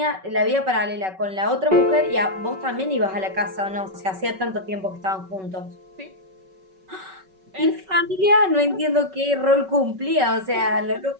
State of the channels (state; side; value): late; left; 5.3 ms